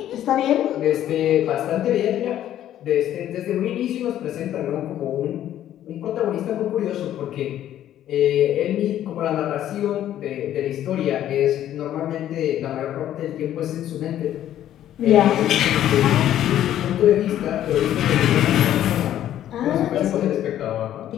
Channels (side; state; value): right; quieter; 11.8 dB